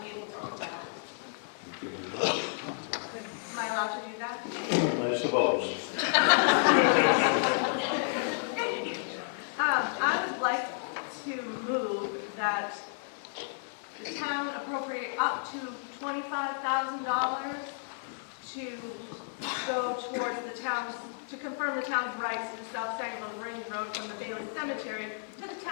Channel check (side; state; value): right; silent; digital silence